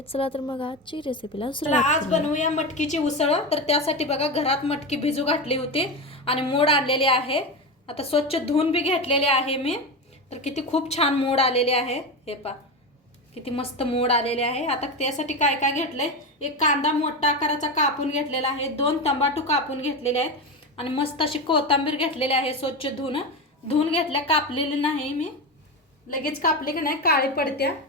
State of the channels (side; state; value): both; normal; correlation 0.19